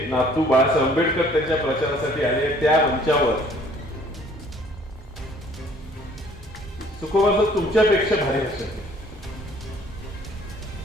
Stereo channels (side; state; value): both; normal; correlation 0.57